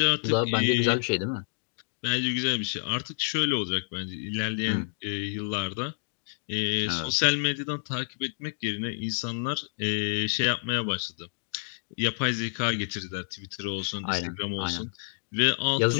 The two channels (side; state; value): right; silent; digital silence